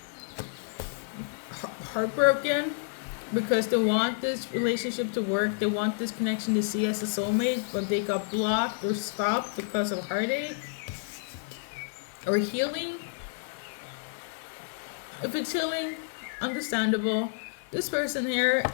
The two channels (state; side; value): silent; right; digital silence